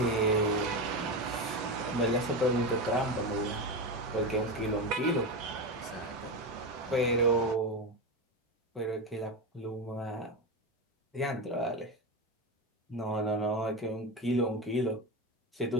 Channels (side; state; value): both; normal; correlation 0.17